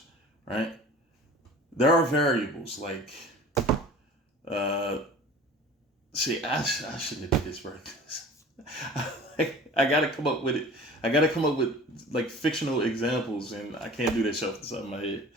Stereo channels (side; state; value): both; normal; correlation 0.43